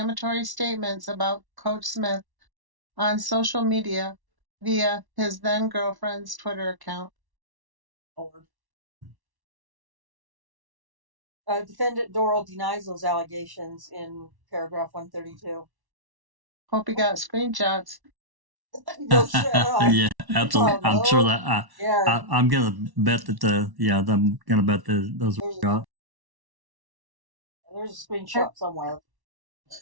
statements about Coach Smith on social media via his then-girlfriend's Twitter account. Defendant Dorrel denies those allegations in paragraph 132. Hope you got screenshots. No shit. Yeah, absolutely. I'm sure that I'm gonna bet that I'm gonna bet those were got. There's a screenshot somewhere.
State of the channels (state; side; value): late; left; 1.1 ms